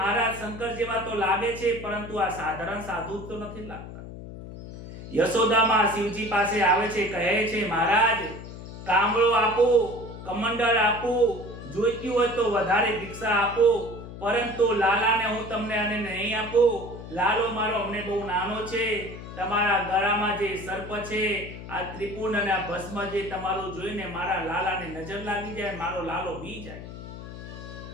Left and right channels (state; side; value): noise; left; hum, 12 dB below the sound